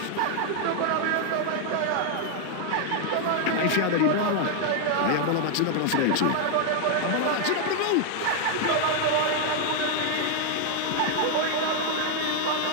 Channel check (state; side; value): different; both; correlation 0.00